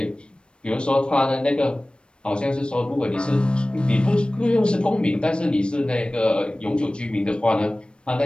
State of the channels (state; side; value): late; right; 0.056 ms